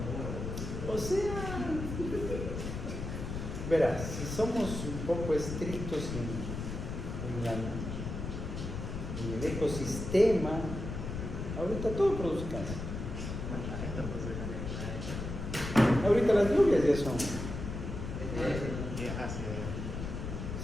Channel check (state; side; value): noise; left; rumble, 5 dB below the sound